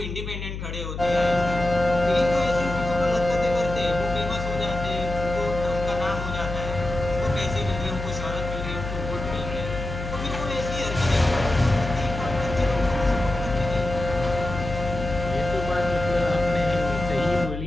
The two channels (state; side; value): noise; left; hum, 7 dB below the sound